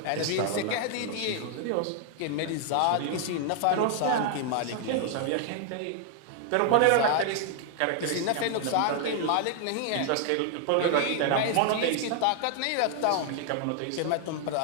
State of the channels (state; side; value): different; both; correlation 0.00